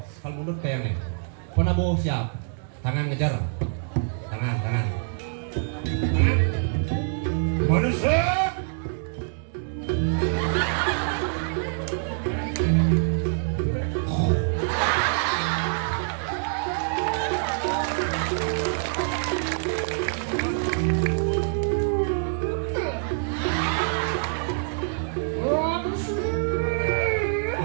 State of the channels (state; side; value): silent; left; digital silence